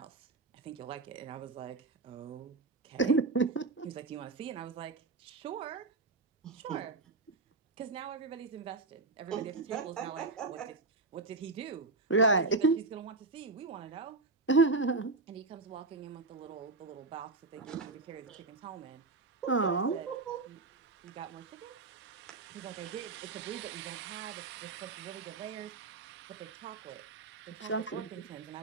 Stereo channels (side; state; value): left; quieter; 3.8 dB